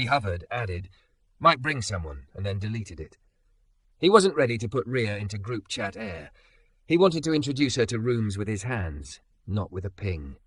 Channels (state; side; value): identical; both; correlation 1.00